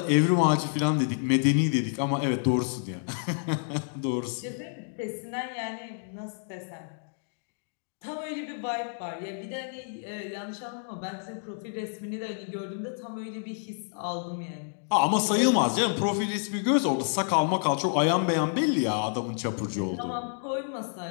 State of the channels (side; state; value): right; silent; digital silence